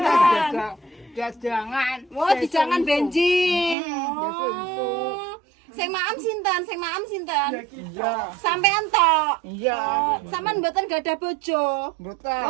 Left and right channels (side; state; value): left; drops out; at 3.8 s